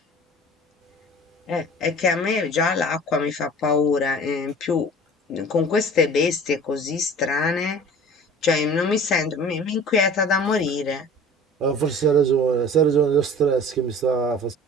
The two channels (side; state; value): both; normal; correlation 0.43